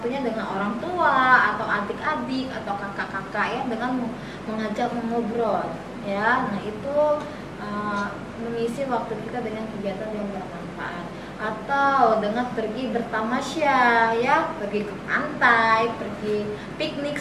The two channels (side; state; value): both; identical; correlation 1.00